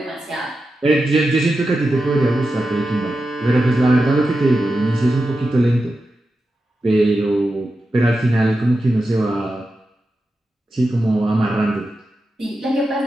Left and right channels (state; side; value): normal; both; correlation 0.90